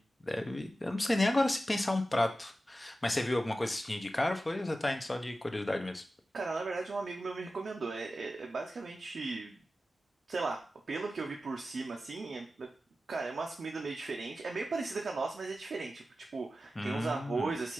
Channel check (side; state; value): both; normal; correlation 0.93